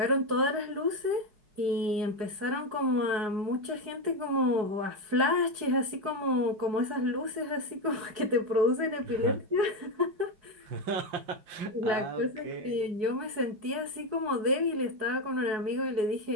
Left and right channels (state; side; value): late; left; 4.8 ms